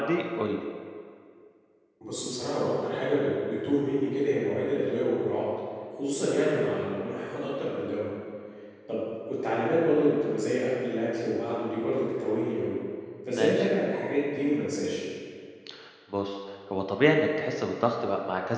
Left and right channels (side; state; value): both; identical; correlation 1.00